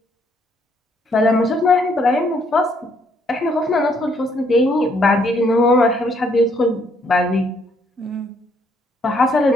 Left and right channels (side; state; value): both; normal; correlation 0.69